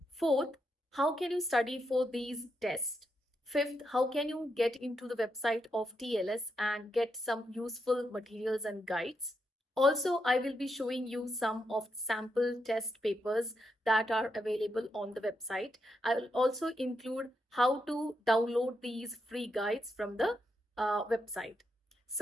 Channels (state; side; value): normal; both; correlation 0.82